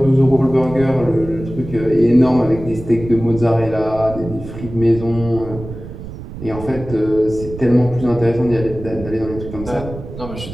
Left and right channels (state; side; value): noise; right; rumble, 12 dB below the sound